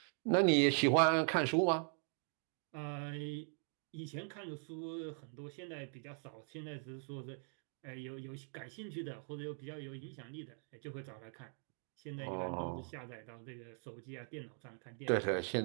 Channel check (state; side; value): silent; left; 51 dB below the other